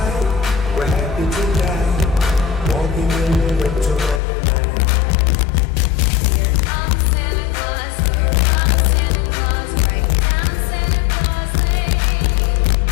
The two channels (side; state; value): right; drops out; at 4.2 s